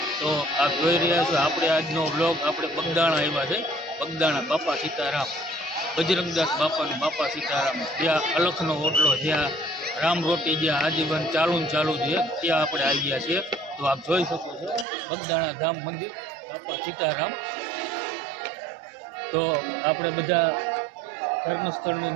તો આપ જોઈ રહ્યા છો આપણે આજનો બ્લોગ આપણે બગદાણા આવ્યા છે। બગદાણા બાપા સીતારામ, બજરંગદાસ બાપાનું બાપા સીતારામ, જ્યાં અલખનો ઓટલો, જ્યાં રામ રોટી, જ્યાં આજીવન ચાલુ છે, ત્યાં આપણે આવી ગયા છીએ। તો આપ જોઈ શકો છો બગદાણા ધામ મંદિર બાપા સીતારામ। તો આપણે બધા ધર્મસ્થળનું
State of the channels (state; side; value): drops out; left; at 14.9 s